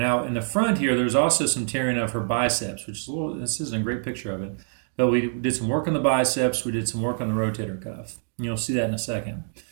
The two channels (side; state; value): left; silent; digital silence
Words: in the front here, there's also some tearing of her biceps, which is this isn't a great picture of it, but we did some work on the biceps, we did some work on the rotator cuff. You'll see that in a second.